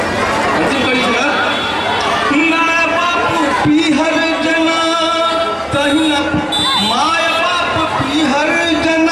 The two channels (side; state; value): both; identical; correlation 1.00